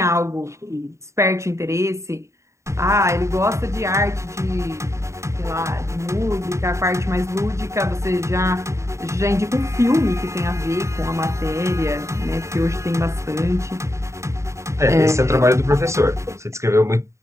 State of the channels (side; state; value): left; late; 0.14 ms